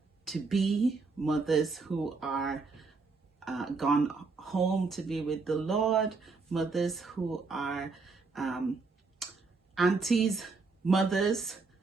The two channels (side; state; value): left; quieter; 4.2 dB